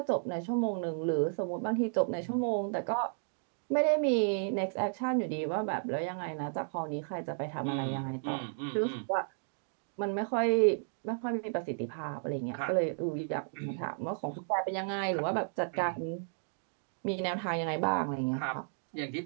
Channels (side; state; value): left; silent; digital silence